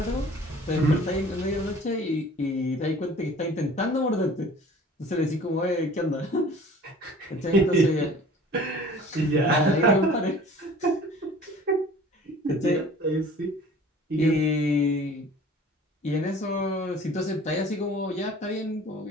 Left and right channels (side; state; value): both; normal; correlation 0.47